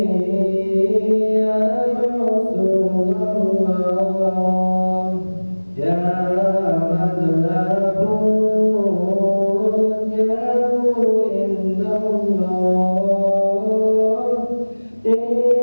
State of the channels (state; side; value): inverted; both; correlation -1.00